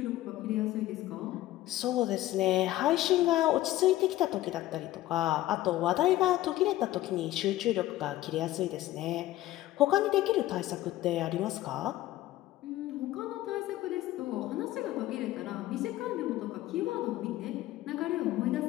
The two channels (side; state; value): right; quieter; 15.4 dB